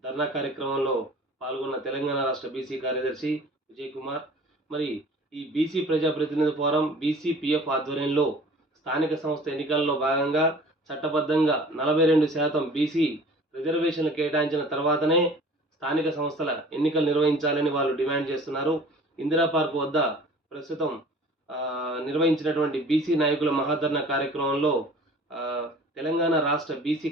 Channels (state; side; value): normal; both; correlation 0.47